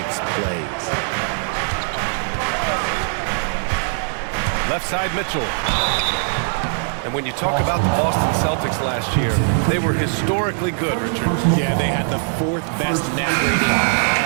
plays. Left side, Mitchell. And when you talk about the Boston Celtics last year, they were historically good, Richard. Yeah, they had the 4th best net rating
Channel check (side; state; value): left; silent; 65 dB below the other